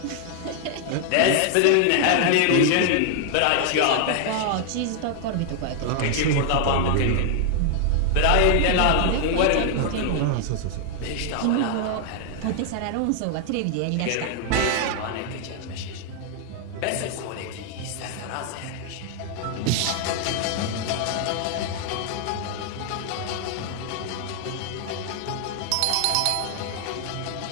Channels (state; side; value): different; both; correlation 0.00